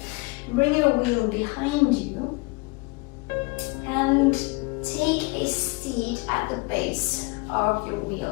Bring your wheel behind you and take a seat at the base of your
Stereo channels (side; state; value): right; quieter; 27.3 dB